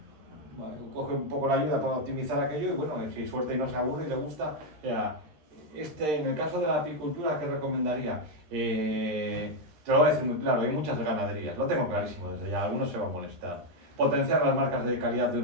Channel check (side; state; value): left; late; 13 ms